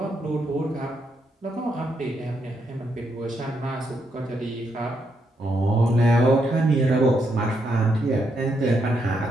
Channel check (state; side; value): normal; both; correlation 0.79